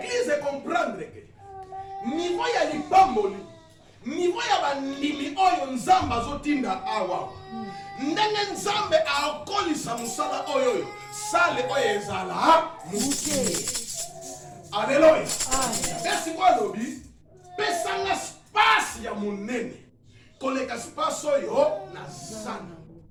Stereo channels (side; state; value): both; identical; correlation 1.00